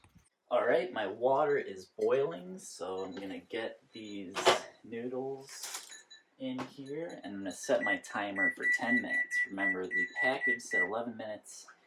Alright, my water is boiling, so I'm gonna get these noodles in here, and I'm gonna set my timer for 10 minutes. Remember, the package said 11 minutes.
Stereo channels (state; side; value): identical; both; correlation 1.00